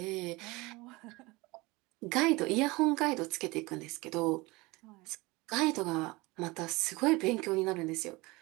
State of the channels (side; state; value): left; quieter; 23.0 dB